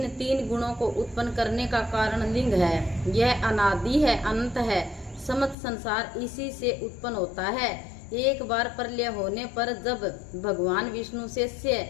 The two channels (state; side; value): drops out; right; at 5.6 s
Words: 3 गुणों को उत्पन्न करने का कारण लिंग है। यह अनादि है, अनंत है। समस्त संसार इसी से उत्पन्न होता है। एक बार प्रलय होने पर जब भगवान विष्णु से